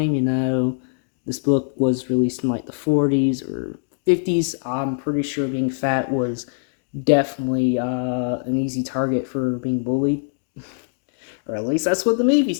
this book was released in like the 40s or 50s. I'm pretty sure being fat was definitely an easy target for being bullied, or at least that's what the movies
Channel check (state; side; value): silent; right; digital silence